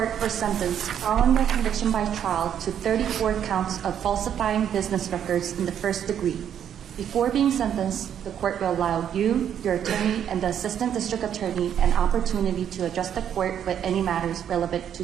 for sentence following your conviction by trial to 34 counts of falsifying business records in the first degree. Before being sentenced, the court will allow you, your attorney, and the assistant district attorney an opportunity to address the court with any matters relevant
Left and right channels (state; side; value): quieter; left; 9.3 dB